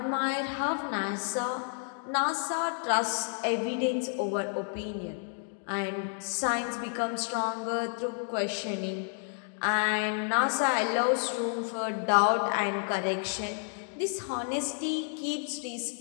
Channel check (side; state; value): right; silent; 57 dB below the other